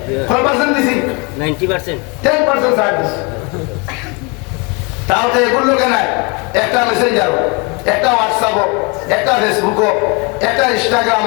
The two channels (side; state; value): right; quieter; 30.6 dB